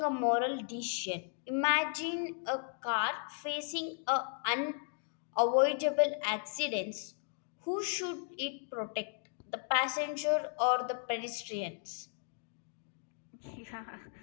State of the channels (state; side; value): silent; right; 54 dB below the other